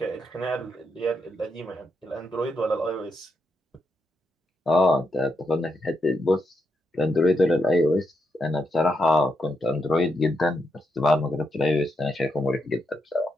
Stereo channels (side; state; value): both; normal; correlation 0.82